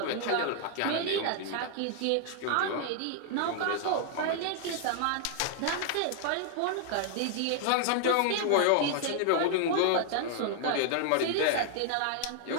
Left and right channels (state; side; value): different; both; correlation 0.00